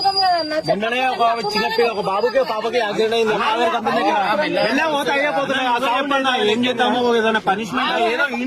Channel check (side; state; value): both; identical; correlation 1.00